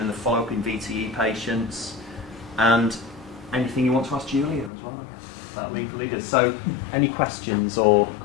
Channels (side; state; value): right; drops out; at 4.7 s